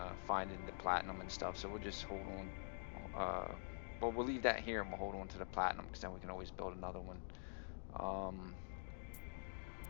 finding the platinum and stuff. So we'll just hold on. Well, we'll leave that here and we'll hold on to the platinum because then we can always build another one.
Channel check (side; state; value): right; silent; digital silence